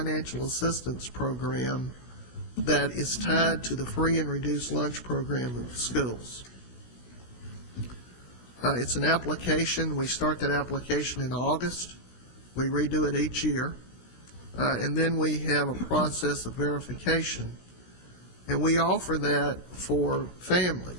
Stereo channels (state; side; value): late; right; 17 ms